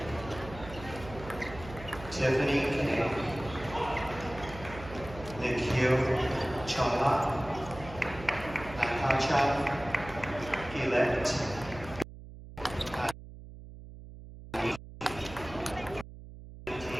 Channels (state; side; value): noise; right; hum, 15 dB below the sound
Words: Tiffany K. Nikhil Chawla. Natasha elect